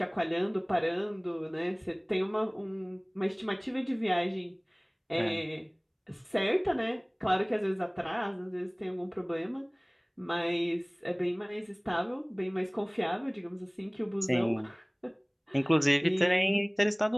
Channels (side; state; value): both; identical; correlation 1.00